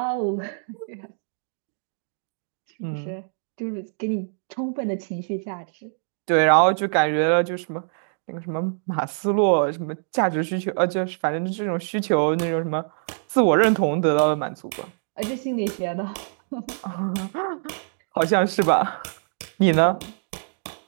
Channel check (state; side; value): silent; left; digital silence